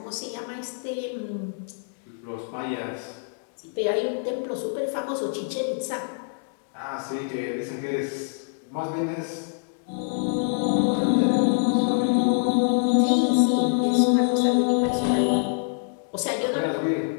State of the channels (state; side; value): silent; right; digital silence